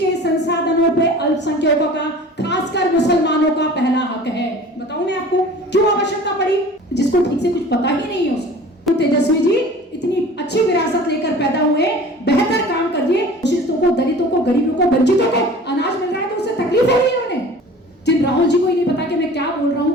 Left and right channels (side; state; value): both; normal; correlation 0.43